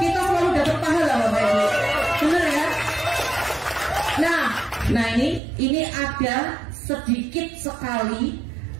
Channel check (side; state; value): left; drops out; at 5.4 s